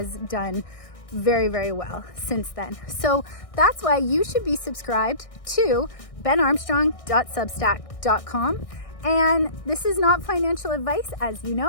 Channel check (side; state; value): right; late; 1.6 ms